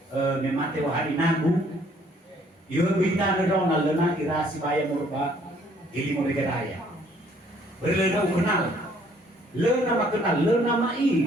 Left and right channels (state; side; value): normal; both; correlation 0.62